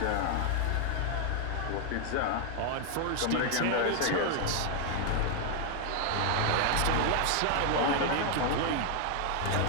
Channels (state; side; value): different; both; correlation 0.00